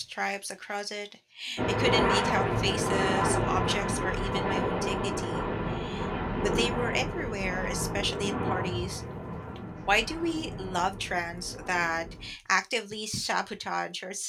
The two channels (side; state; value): both; identical; correlation 1.00